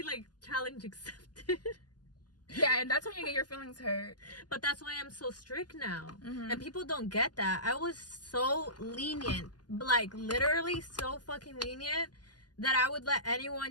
like, challenge accepted. Yeah, and that's when you get your feelings hurt. But that's why I'm so strict now. And people don't get that. I was so lenient, like literally so fucking lenient, that I would let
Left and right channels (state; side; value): late; right; 0.70 ms